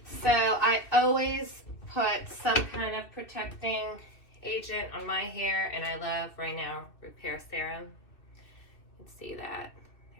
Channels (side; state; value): right; late; 2.6 ms